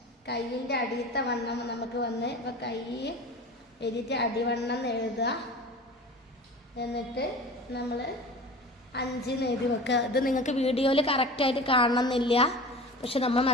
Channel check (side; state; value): both; normal; correlation 0.36